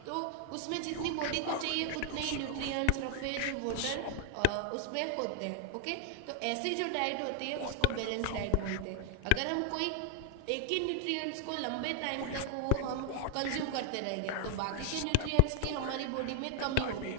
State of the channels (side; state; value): both; different; correlation 0.00